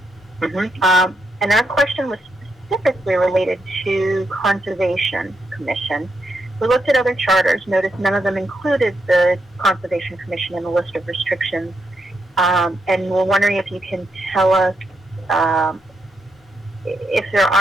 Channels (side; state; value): both; normal; correlation 0.81